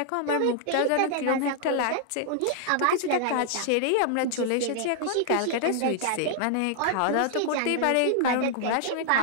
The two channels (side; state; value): both; different; correlation 0.00